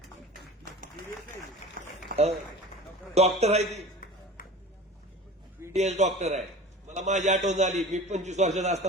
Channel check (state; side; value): normal; both; correlation 0.37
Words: डॉक्टर आहे ती, बीडीएस डॉक्टर आहे. मला माझी आठवण झाली, मी 25 वर्षाचा